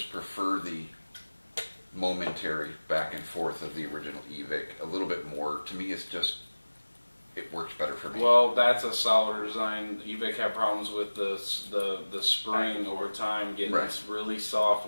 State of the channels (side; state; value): both; inverted; correlation -1.00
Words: prefer the momentary back and forth of the original eVic a little bit more. To me, it's just, it works better for me. Well, that's a solider design. eVic had problems with the spring over time getting Right. really soft.